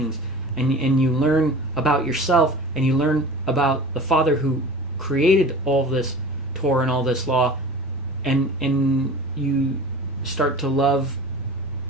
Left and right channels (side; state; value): both; normal; correlation 0.38